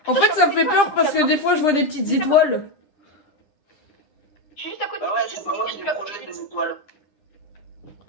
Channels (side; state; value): right; late; 9.9 ms